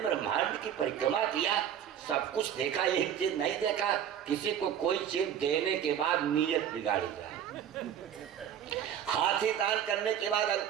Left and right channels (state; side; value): quieter; left; 9.4 dB